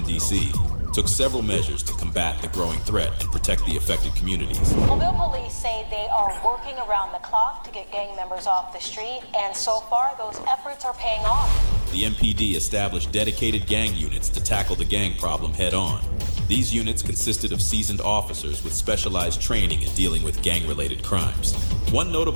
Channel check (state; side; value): inverted; both; correlation -1.00